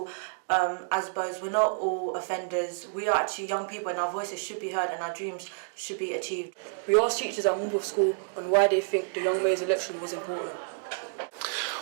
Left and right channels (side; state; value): left; silent; digital silence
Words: ASBOs, we're not all offenders. We are actually young people, and our voices should be heard and our dreams should be achieved. We asked teachers at Morpeth School on why they think the young mayor's election was important.